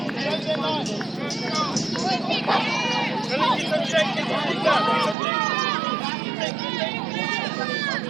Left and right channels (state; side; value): drops out; left; at 5.2 s